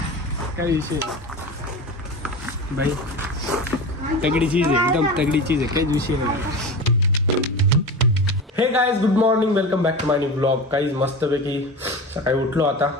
काही विषय भाई तगडी चीज आहे एकदम तगडी चीज आहे काहीच विषय नाही. Hey guys good morning welcome back to my new blog. काहीच मस्तपैकी सकाळी उठलो आता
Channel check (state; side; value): normal; both; correlation 0.29